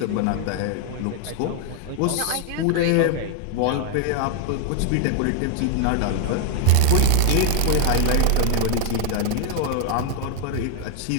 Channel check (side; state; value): both; different; correlation 0.00